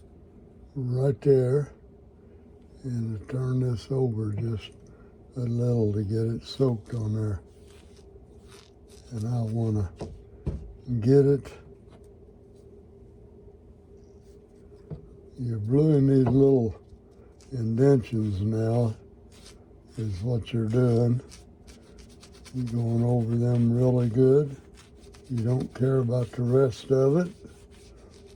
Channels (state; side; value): identical; both; correlation 1.00